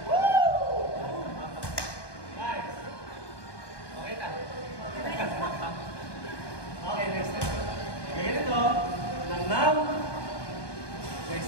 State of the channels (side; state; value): right; late; 1.2 ms